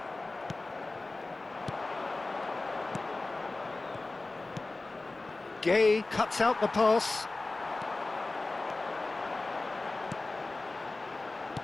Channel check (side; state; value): right; quieter; 3.2 dB